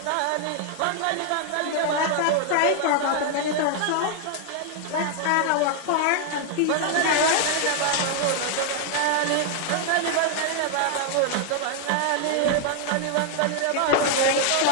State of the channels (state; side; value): different; both; correlation 0.00